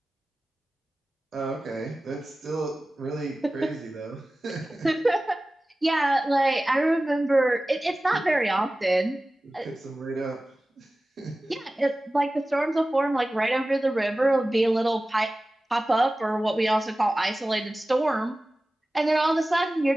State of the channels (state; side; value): normal; both; correlation 0.96